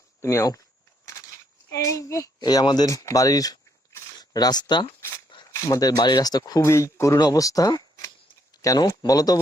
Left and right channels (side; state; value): both; normal; correlation 0.72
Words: তুমি আও এই আমাদের বাড়ির রাস্তা খুবই করুণ অবস্থা কেন বলো তো